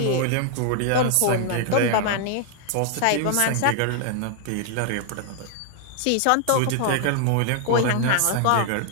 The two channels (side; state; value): both; different; correlation 0.00